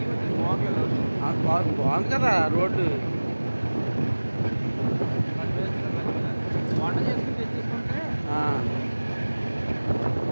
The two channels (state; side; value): inverted; both; correlation -1.00